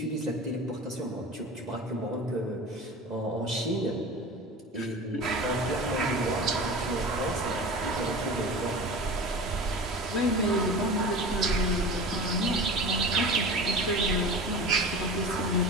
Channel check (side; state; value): both; normal; correlation 0.34